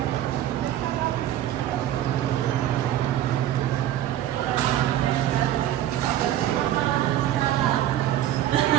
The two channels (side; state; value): left; quieter; 12.4 dB